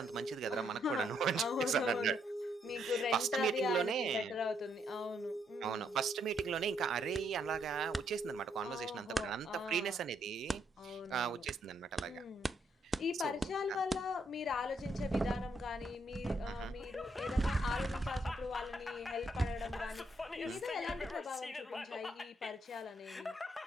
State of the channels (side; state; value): both; normal; correlation 0.74